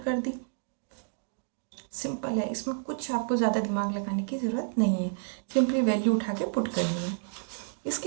दी, सिंपल है, इसमें कुछ आपको ज़्यादा दिमाग लगाने की ज़रूरत नहीं है, सिंपली वैल्यू उठा के पुट करनी है।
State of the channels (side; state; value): left; silent; digital silence